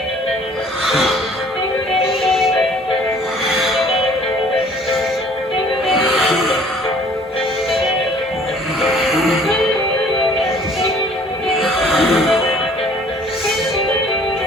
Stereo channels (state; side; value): normal; both; correlation 0.55